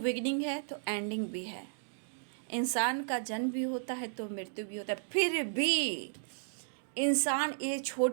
है तो एंडिंग भी है। इंसान का जन्म भी होता है तो मृत्यु भी होता है, फिर भी इंसान ये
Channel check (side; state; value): left; silent; digital silence